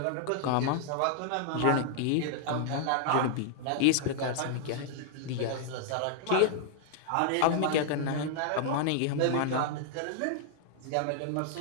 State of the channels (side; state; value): both; different; correlation -0.01